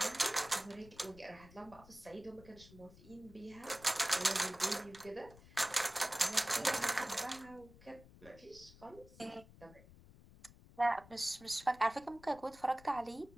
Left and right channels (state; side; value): noise; left; rumble, 21 dB below the sound